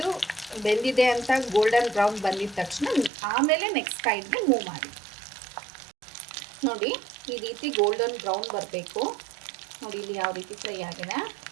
ಬೆಂದಿದೆ ಅಂತ ಗೋಲ್ಡನ್ ಬ್ರೌನ್ ಬಂದಿದ ತಕ್ಷಣ ಆಮೇಲೆ ನೆಕ್ಸ್ಟ್ ಸೈಡ್ಗೆ ಮೂವ್ ಮಾಡಿ. ನೋಡಿ, ಈ ರೀತಿ ಗೋಲ್ಡನ್ ಬ್ರೌನ್ ಬರಬೇಕು. ನೋಡಿ, ಇಲ್ಲಿ ಯಾವ ರೀತಿ ಫ್ರೈ ಆಗಿದೆ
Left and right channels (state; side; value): drops out; left; at 3.1 s